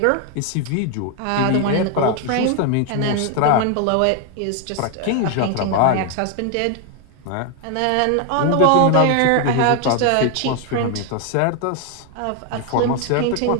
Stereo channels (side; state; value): both; different; correlation 0.01